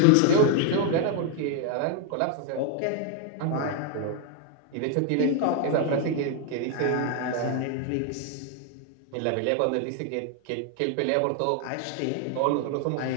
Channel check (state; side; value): different; both; correlation 0.00